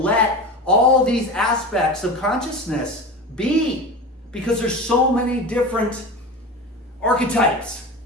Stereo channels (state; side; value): normal; both; correlation 0.29